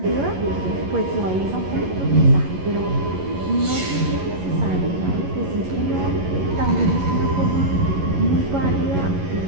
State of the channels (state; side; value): late; left; 11 ms